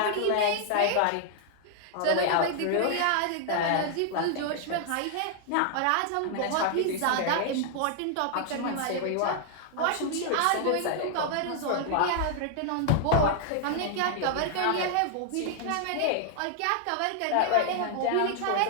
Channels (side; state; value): both; different; correlation 0.00